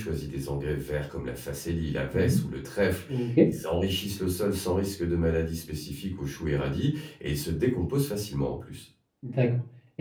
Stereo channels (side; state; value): both; identical; correlation 1.00